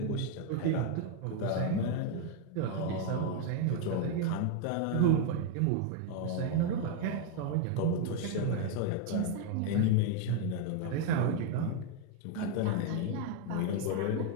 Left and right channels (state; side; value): different; both; correlation 0.01